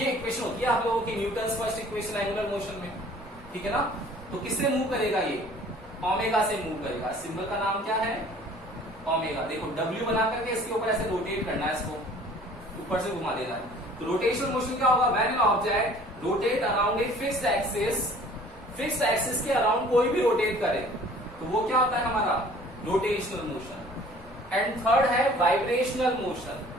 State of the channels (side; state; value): both; normal; correlation 0.51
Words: इक्वेशन होती है आप लोगों की Newton's first equation angular motion में, ठीक है ना। तो किससे मूव करेगा ये, ओमेगा से मूव करेगा, सिंबल का नाम क्या है ओमेगा। देखो w बना करके इसके ऊपर ऐसे रोटेट करना है, इसको ऊपर से घुमा देना है। तो रोटेशनल मोशन क्या होगा, when an object rotate around a fixed axis, fixed axis के अराउंड कोई भी रोटेट करे तो वो क्या होता है हमारा रोटेशनल मोशन। एंड थर्ड है वाइब्रेशनल मोशन।